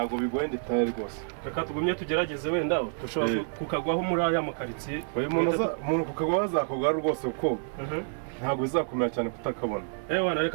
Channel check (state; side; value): silent; left; digital silence